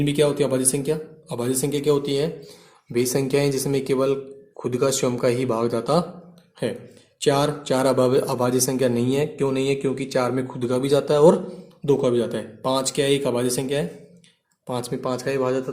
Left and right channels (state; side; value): identical; both; correlation 1.00